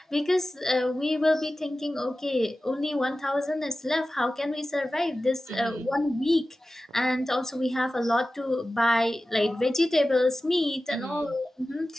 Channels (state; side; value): normal; both; correlation 0.95